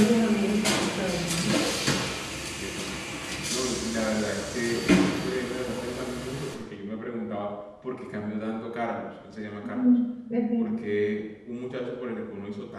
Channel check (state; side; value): identical; both; correlation 1.00